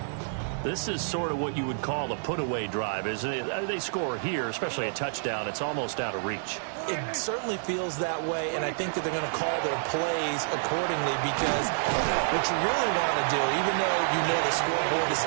This is sort of what you would call a put-away drive, isn't it? They score here, especially a touchdown. It's almost out of reach. It certainly feels that way, and I think that they're going to call their plays accordingly because what you really want to do, even though you know the scoreboard is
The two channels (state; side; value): silent; left; digital silence